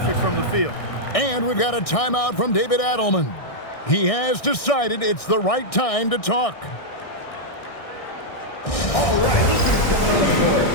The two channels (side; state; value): right; late; 1.6 ms